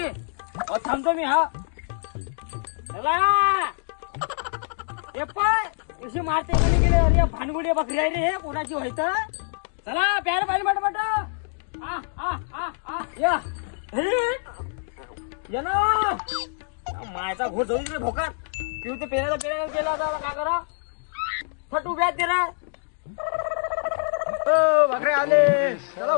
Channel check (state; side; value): silent; right; digital silence